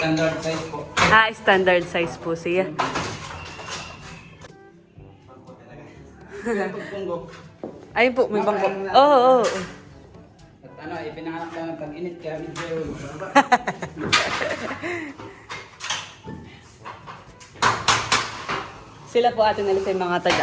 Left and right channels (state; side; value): identical; both; correlation 1.00